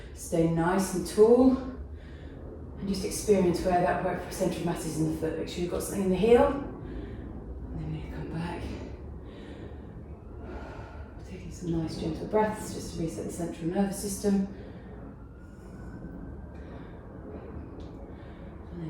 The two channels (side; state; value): both; identical; correlation 1.00